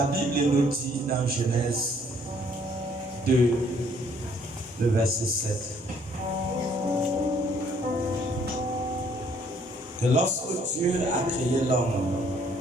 Bible nous dit dans Genèse 2, le verset 7, que lorsque Dieu a créé l'homme,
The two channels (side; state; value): both; normal; correlation 0.63